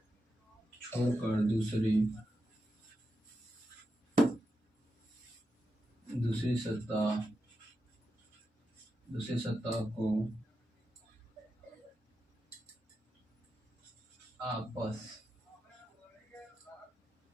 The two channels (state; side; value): normal; both; correlation 0.87